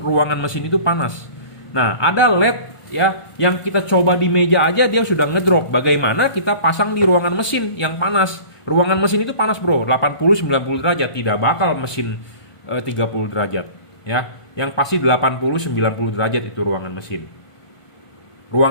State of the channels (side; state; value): right; late; 1.5 ms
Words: mesin itu panas. Nah, ada LED ya yang kita coba di meja aja dia sudah ngedrop. Bagaimana kita pasang di ruangan mesin yang panas? Ruangan mesin itu panas, bro. 80-90 derajat, tidak bakal mesin 30 derajat, ya. Yang pasti 80-90 derajat itu ruangan mesin.